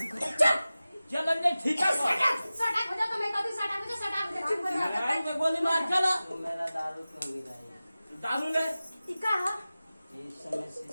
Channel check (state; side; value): inverted; both; correlation -0.96